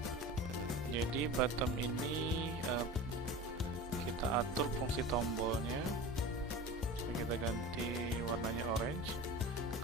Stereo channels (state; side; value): normal; both; correlation 0.33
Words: Jadi bottom ini kita atur fungsi tombolnya. So, kita ganti warnanya orange.